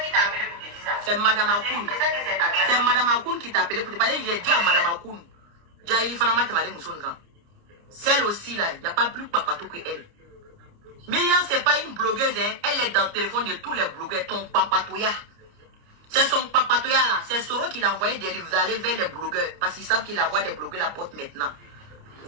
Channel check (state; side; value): late; left; 29 ms